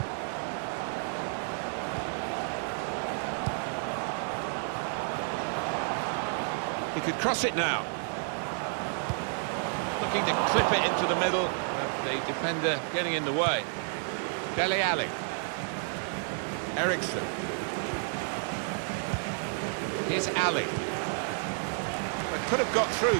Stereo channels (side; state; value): left; silent; 55 dB below the other